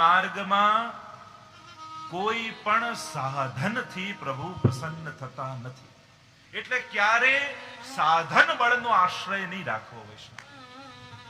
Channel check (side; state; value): both; identical; correlation 1.00